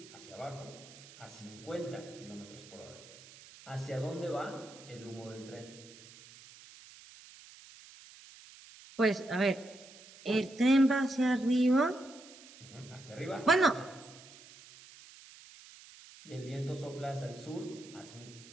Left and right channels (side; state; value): right; noise; hiss, 20 dB below the sound